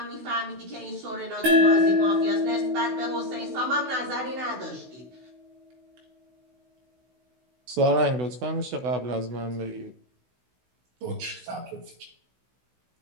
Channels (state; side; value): late; left; 16 ms